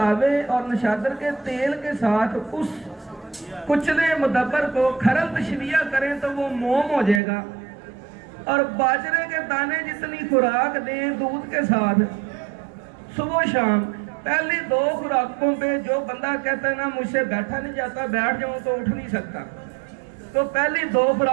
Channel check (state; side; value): drops out; left; at 7.2 s